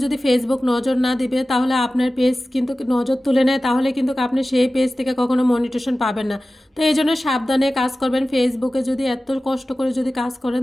যদি ফেসবুক নজর না দিবে তাহলে আপনার পেজ কিন্তু নজর তুলে নেয়, তাহলে কিন্তু আপনি সেই পেজ থেকে কখনো মনিটেশন পাবেন না। তো এই জন্য সাবধানে কাজ করবেন। ফেসবুকে যদি এত কষ্ট করে যদি কাজ করেন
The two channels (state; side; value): normal; both; correlation 0.96